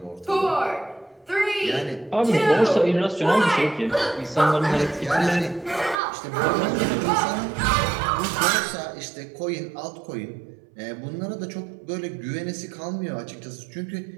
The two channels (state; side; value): drops out; left; at 6.0 s